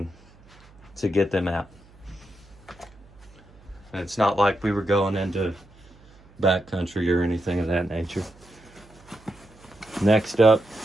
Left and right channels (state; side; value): noise; right; hum, 26 dB below the sound